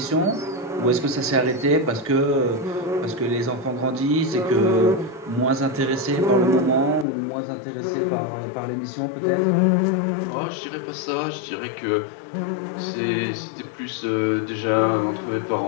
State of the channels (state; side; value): drops out; right; at 7.1 s